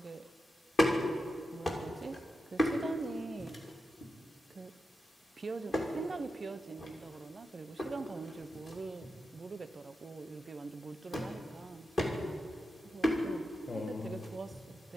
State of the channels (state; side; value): normal; both; correlation 0.89